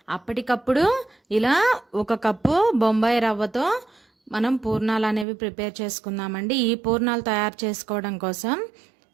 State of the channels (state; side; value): drops out; left; at 5.2 s